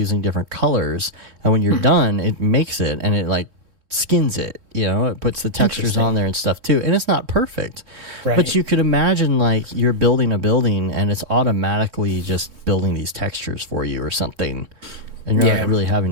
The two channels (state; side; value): late; left; 3.7 ms